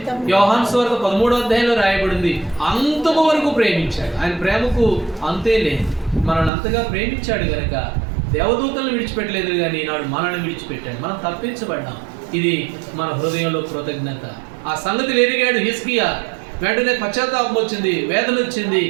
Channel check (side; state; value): left; drops out; at 6.5 s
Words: యోహాను సువార్త 13వ అధ్యాయంలో రాయబడింది, అంతము వరకు ప్రేమించాడు. ఆయన ప్రేమకు అంతే లేదు. మనల్ని అంతగా ప్రేమించాడు కనుక దేవదూతలను విడిచిపెట్టలేదు, కానీ ఈనాడు మనల్ని విడిచిపెట్టాడు. మనం తప్పించబడ్డాం. ఇది మన హృదయంలో కృతజ్ఞత. ఆ సంగతి ఎరిగాడు హిజ్కియా. వెంటనే పశ్చాత్తాపం వచ్చింది, వేదన వచ్చింది.